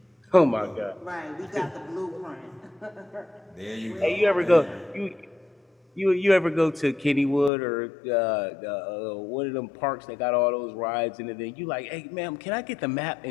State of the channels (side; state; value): right; drops out; at 7.5 s